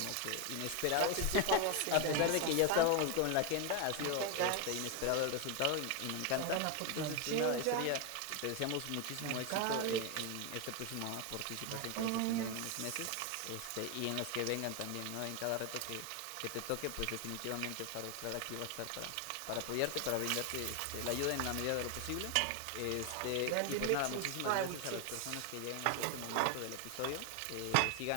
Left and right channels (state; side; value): different; both; correlation 0.01